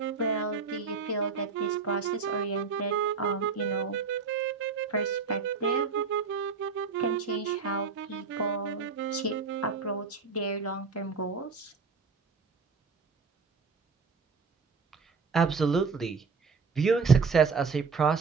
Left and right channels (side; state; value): left; quieter; 5.0 dB